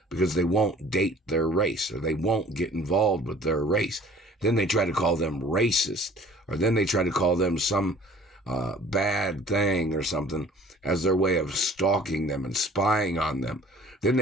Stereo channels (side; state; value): both; normal; correlation 0.50